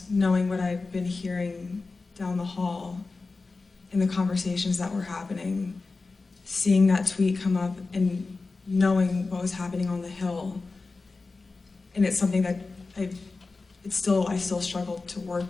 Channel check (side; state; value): right; quieter; 3.8 dB